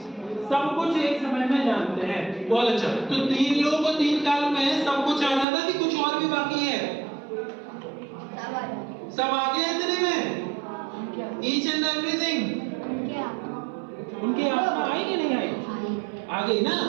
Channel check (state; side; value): drops out; left; at 5.5 s